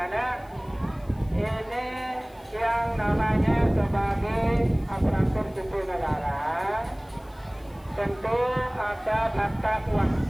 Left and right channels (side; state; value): left; noise; hiss, 30 dB below the sound